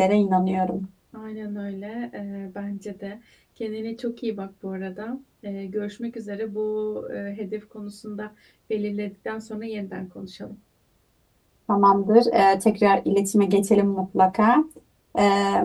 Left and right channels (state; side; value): identical; both; correlation 1.00